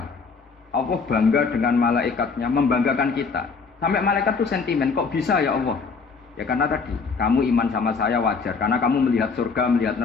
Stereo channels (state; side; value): quieter; right; 5.0 dB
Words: Allah bangga dengan malaikatnya, membanggakan kita. Sampai malaikat tuh sentimen, kok bisa ya Allah? Ya karena tadi, kamu iman sama saya wajar. Karena kamu melihat surga, melihat